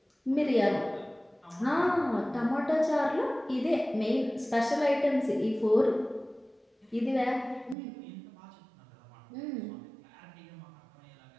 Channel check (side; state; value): left; drops out; at 7.8 s